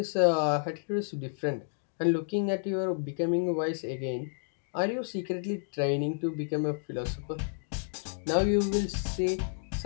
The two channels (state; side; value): silent; right; digital silence